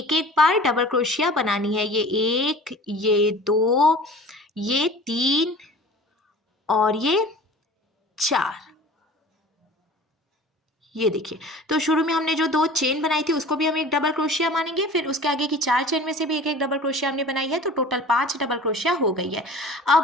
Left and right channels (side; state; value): both; normal; correlation 0.42